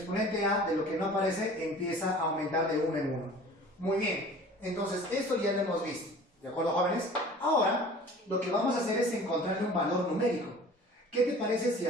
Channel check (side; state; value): both; normal; correlation 0.44